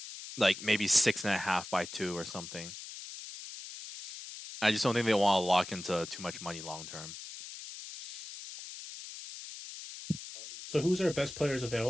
Like maybe 6.5 by 2 or something. I just don't think they want to lock into too much money long term. So who's our best players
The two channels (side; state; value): left; noise; hiss, 11 dB below the sound